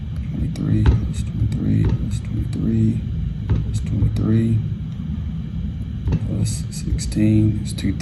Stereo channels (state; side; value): identical; both; correlation 1.00